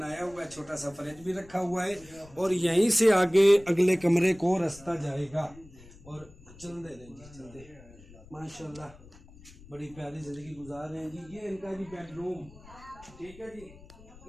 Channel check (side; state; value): left; noise; rumble, 22 dB below the sound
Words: हुआ है। छोटा सा फ्रिज भी रखा हुआ है और यहीं से आगे अगले कमरे को रास्ता जाएगा। और चल दे रहे जी, चल दे माशाल्लाह बड़ी प्यारी ज़िंदगी गुजार रहे हैं जी। ये इनका जी बेडरूम, ठीक है जी,